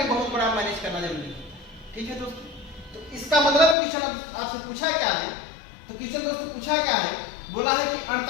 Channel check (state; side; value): drops out; right; at 3.8 s